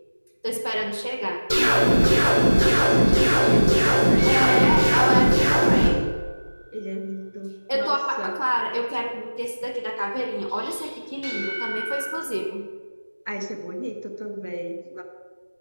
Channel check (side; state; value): both; inverted; correlation -1.00